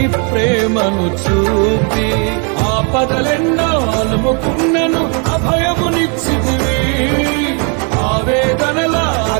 ప్రేమను చూపి. ఆపదలెన్నో అలుముకున్నను అభయమునిచ్చితివి. ఆవేదనల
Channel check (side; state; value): left; quieter; 37.0 dB